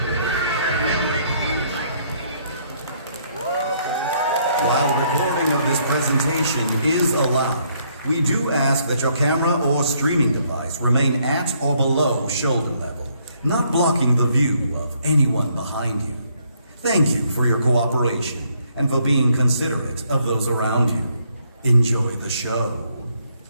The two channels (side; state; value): both; inverted; correlation -0.69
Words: While recording of this presentation is allowed, we do ask that your camera or streaming device remain at or below shoulder level, not blocking the view of anyone behind you. Thank you for your cooperation and for being considerate of those around you. Enjoy the show.